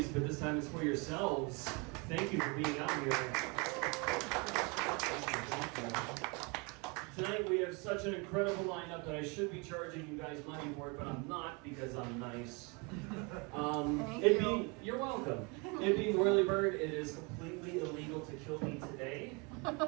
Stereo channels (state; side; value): quieter; left; 29.7 dB